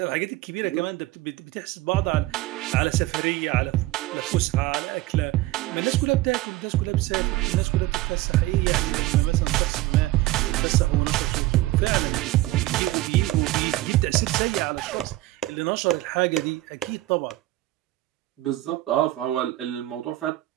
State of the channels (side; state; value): left; quieter; 16.9 dB